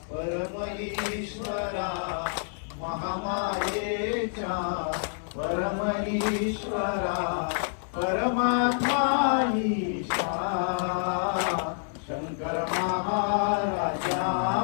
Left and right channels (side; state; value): right; silent; 59 dB below the other